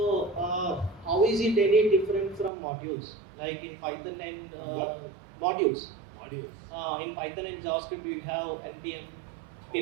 how is it any different from modules? Like in Python and modules. Modules. In Python and JavaScript, we have npm,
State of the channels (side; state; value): left; drops out; at 2.5 s